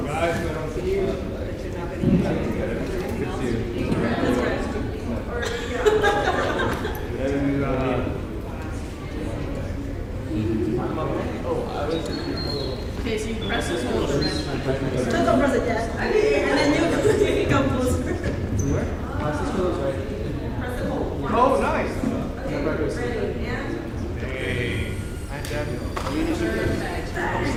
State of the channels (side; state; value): both; identical; correlation 1.00